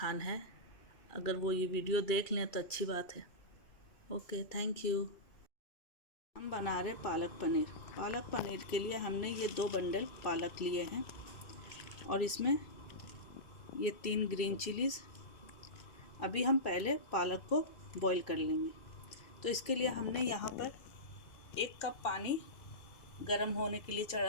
है। अगर वो ये वीडियो देख लें तो अच्छी बात है। Okay, thank you. हम बना रहे पालक पनीर। पालक पनीर के लिए हमने ये 2 बंडल पालक लिए हैं और इसमें ये 3 ग्रीन चिलीज़। अभी हम पहले पालक को बॉईल कर लेंगे। तो इसके लिए हमने यहाँ पर 1 कप पानी गरम होने के लिए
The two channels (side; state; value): right; late; 2.3 ms